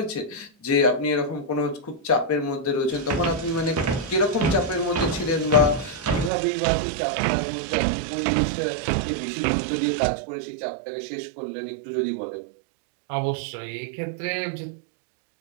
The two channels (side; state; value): left; drops out; at 6.3 s